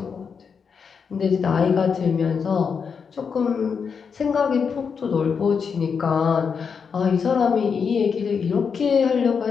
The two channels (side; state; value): right; quieter; 6.1 dB